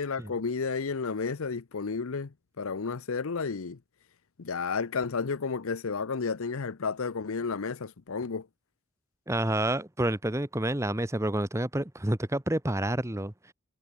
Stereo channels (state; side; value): normal; both; correlation 0.29